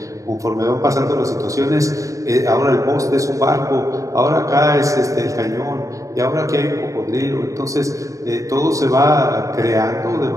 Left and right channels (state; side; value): late; left; 0.16 ms